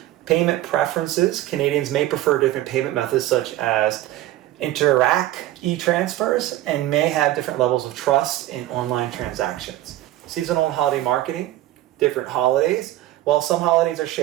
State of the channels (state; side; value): quieter; left; 15.0 dB